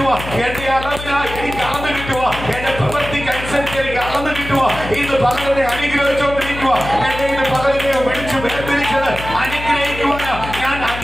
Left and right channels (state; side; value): noise; left; hum, 10 dB below the sound